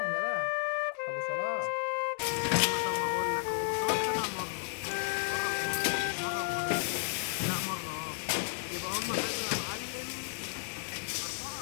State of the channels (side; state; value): right; silent; digital silence